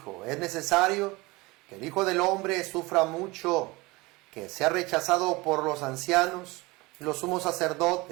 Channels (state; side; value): quieter; left; 23.0 dB